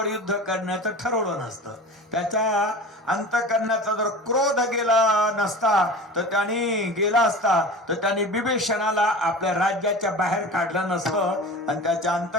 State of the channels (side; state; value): both; normal; correlation 0.35